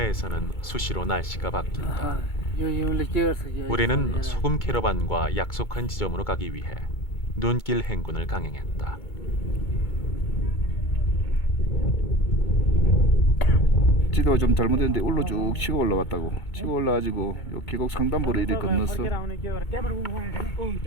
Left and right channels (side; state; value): right; late; 2.2 ms